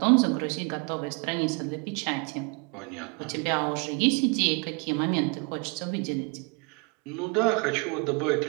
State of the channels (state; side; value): quieter; left; 33.1 dB